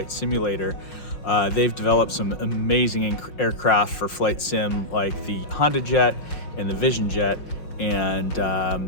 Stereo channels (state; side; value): late; right; 5.5 ms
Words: Simulator. They've developed some amazing aircraft for flight sim like the Honda Jet and the Vision Jet, and